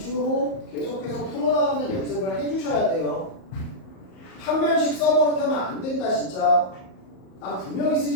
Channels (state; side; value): late; right; 38 ms